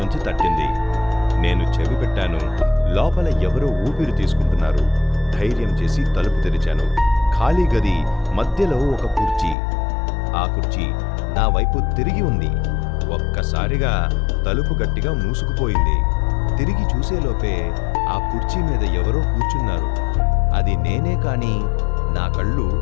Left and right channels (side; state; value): right; drops out; at 9.6 s